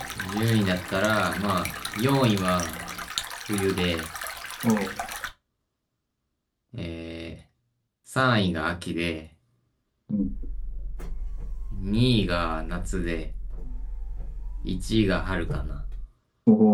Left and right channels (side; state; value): both; identical; correlation 1.00